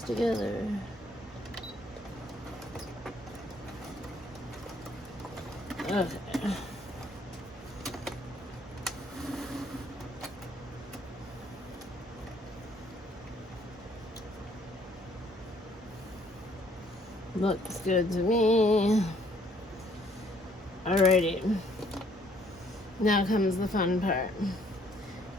together. Okay. Looks good to me. Alrighty. Now comes the fun part.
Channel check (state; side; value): normal; both; correlation 0.63